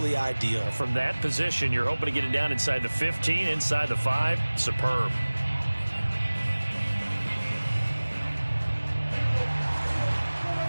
ideal. From that position, you're hoping to get it down inside the 15, inside the 5. Superb.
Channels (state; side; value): inverted; both; correlation -1.00